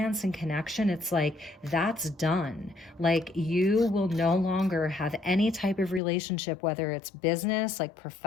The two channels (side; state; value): right; drops out; at 6.0 s